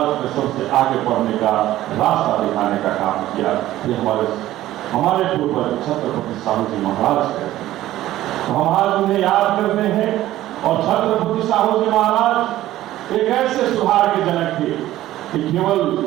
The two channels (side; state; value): left; quieter; 14.6 dB